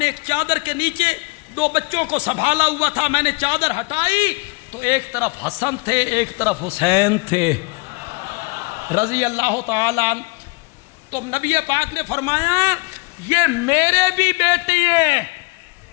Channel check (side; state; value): right; quieter; 28.5 dB